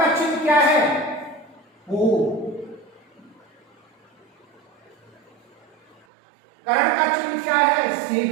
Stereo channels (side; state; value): left; drops out; at 6.1 s